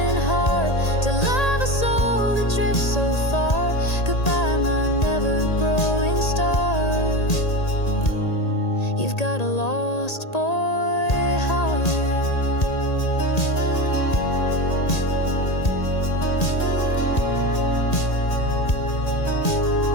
You've got a lost boy heart.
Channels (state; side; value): late; right; 1.8 ms